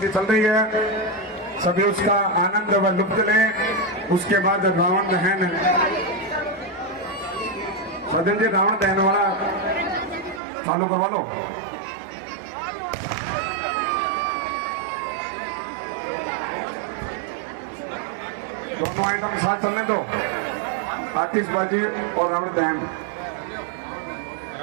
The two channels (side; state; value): left; drops out; at 10.4 s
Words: चल रही है, सभी उसका आनंद व लुत्फ लें। उसके बाद रावण दहन। सजन जी रावण दहन वाला चालू करवा लो। दोनों आइटम साथ चलने दो, आतिशबाजी और रावण दहन।